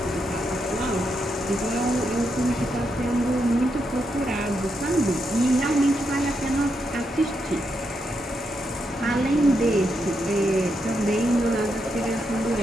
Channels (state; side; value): normal; both; correlation 0.82